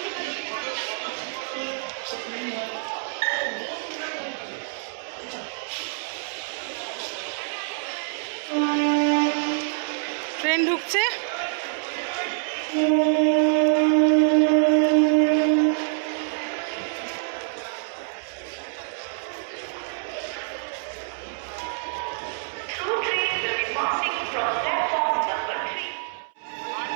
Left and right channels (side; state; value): left; silent; 61 dB below the other